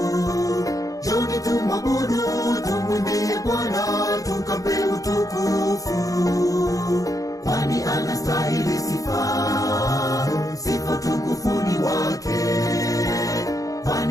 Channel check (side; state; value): right; late; 0.17 ms